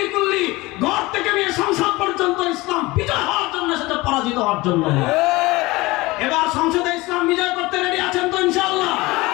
কুল্লি, ঘর থেকে নিয়ে সংসদ পর্যন্ত ইসলাম বিজয় হওয়ার জন্য এসেছে, পরাজিত হওয়ার জন্য? এবার সংসদে ইসলাম বিজয় করতে রেডি আছেন তো ইনশাআল্লাহ?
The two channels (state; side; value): quieter; right; 21.4 dB